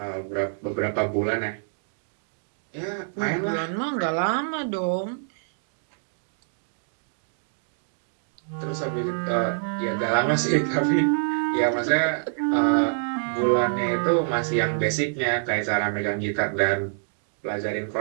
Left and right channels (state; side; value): silent; left; digital silence